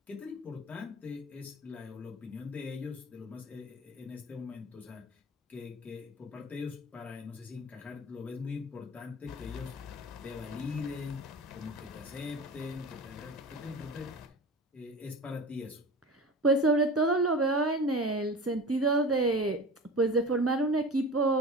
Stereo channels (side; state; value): both; normal; correlation 0.34